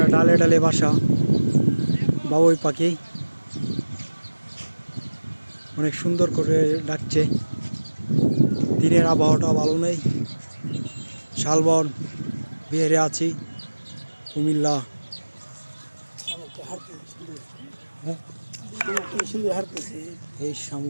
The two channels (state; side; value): inverted; both; correlation -1.00